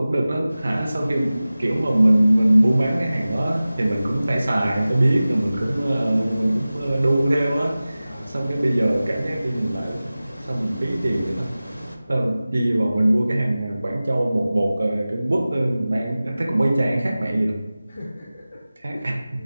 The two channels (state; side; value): inverted; both; correlation -0.97